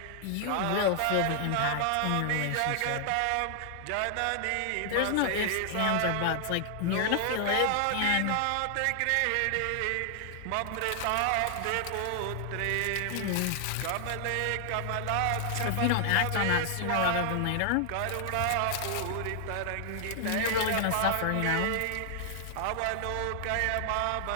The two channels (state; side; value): different; both; correlation 0.00